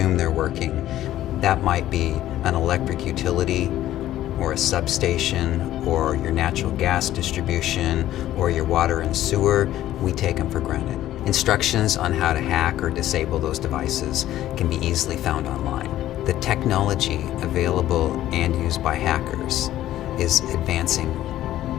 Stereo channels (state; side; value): quieter; right; 13.5 dB